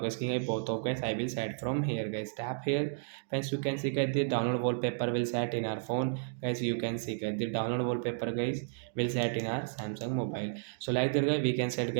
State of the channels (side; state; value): left; silent; digital silence